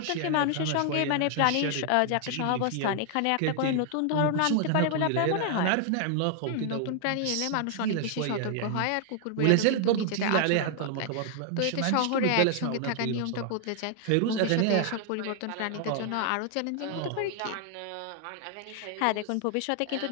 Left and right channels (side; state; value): both; different; correlation 0.00